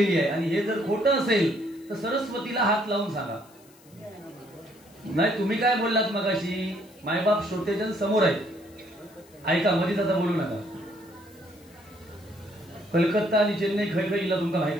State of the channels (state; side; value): noise; left; hiss, 27 dB below the sound